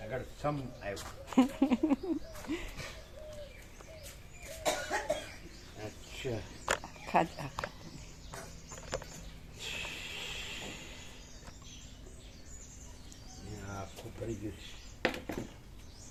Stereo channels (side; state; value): both; identical; correlation 1.00